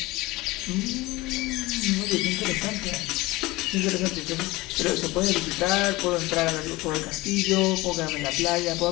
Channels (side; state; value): right; quieter; 20.7 dB